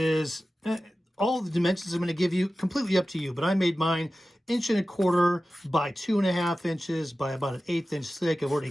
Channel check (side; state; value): both; normal; correlation 0.95